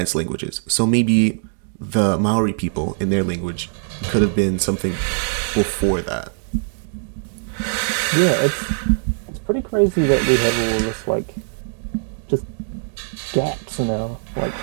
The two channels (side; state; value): left; silent; digital silence